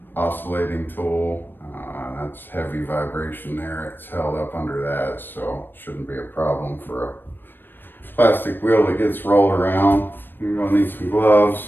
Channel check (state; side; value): late; right; 0.095 ms